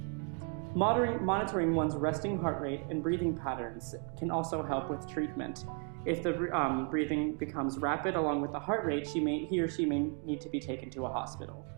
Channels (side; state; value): left; quieter; 39.8 dB